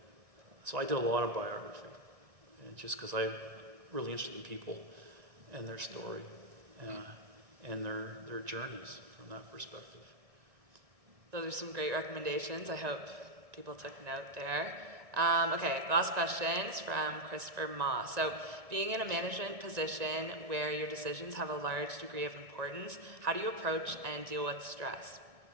so I did a lot of biography, just because I'm really interested in people and their story and their journeys from that perspective. Those are some great recommendations. I hope people took note there. Okay, last question is from Christopher Ma. So, being in a management position where your decisions have a large degree of importance, how do you approach and deal with stress?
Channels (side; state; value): left; late; 1.9 ms